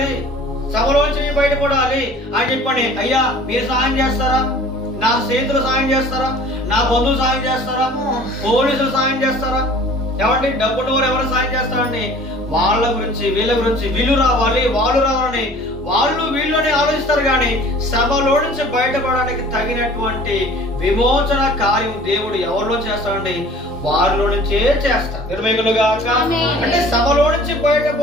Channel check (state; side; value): normal; both; correlation 0.48